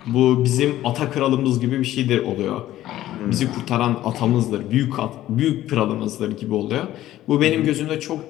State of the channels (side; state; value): right; quieter; 14.0 dB